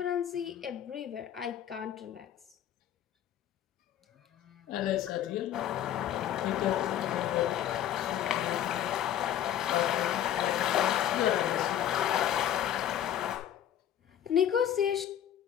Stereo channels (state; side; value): quieter; right; 10.9 dB